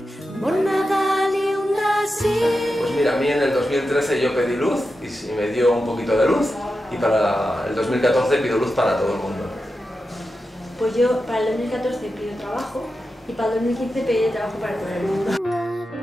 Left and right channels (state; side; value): normal; both; correlation 0.90